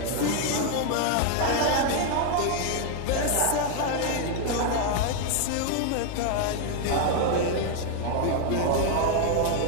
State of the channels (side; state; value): both; different; correlation 0.01